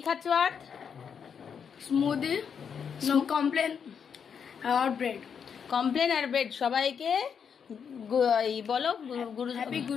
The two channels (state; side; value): quieter; right; 7.0 dB